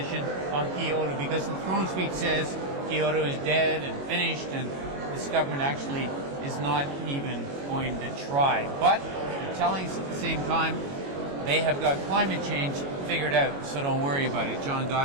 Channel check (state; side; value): late; left; 22 ms